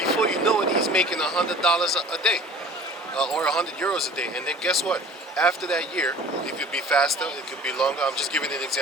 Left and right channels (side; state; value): both; normal; correlation 0.45